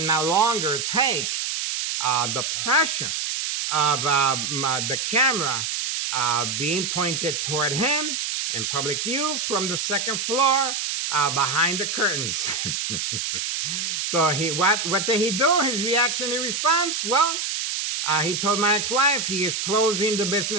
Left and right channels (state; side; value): noise; right; hiss, 2 dB below the sound